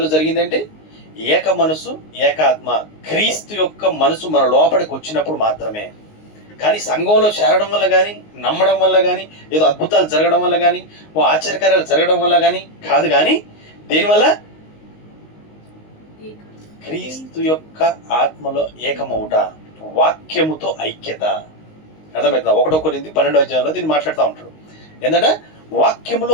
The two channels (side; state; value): right; late; 19 ms